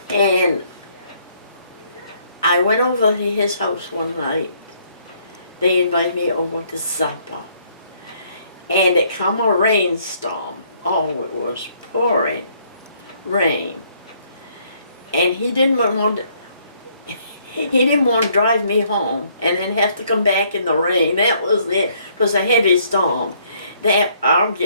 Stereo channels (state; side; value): inverted; both; correlation -0.66